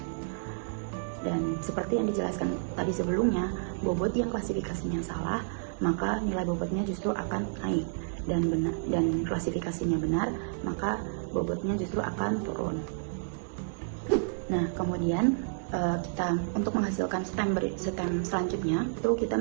Dan seperti yang dijelaskan tadi sebelumnya, bobot yang klasifikasinya salah, maka nilai bobotnya justru akan naik, dan klasifikasinya benar, maka bobotnya justru akan turun. Nah, kemudian kita untuk menghasilkan stem selanjutnya itu kita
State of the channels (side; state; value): left; silent; digital silence